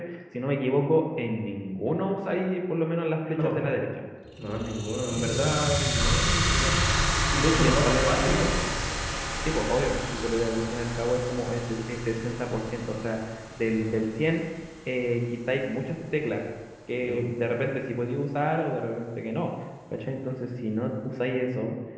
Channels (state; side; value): identical; both; correlation 1.00